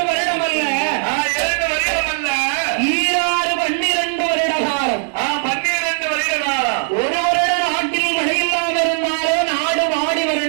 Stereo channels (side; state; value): left; silent; 59 dB below the other